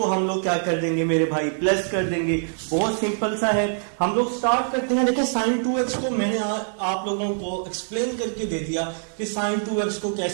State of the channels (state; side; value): silent; left; 63 dB below the other